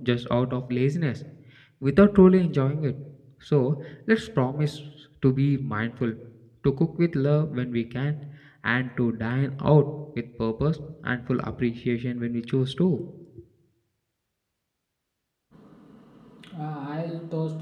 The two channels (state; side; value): identical; both; correlation 1.00